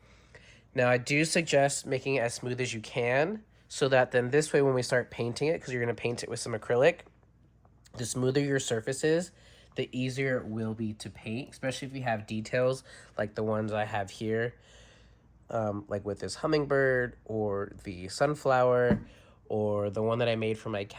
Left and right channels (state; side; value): identical; both; correlation 1.00